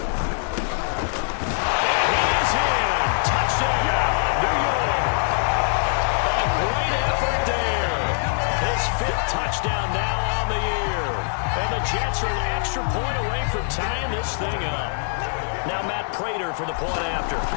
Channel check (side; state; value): right; silent; digital silence